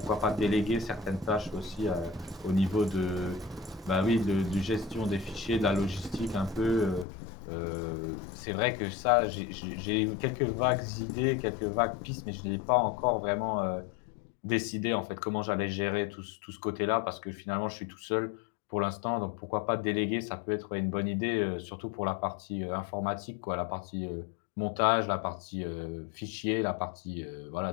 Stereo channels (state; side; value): drops out; right; at 7.1 s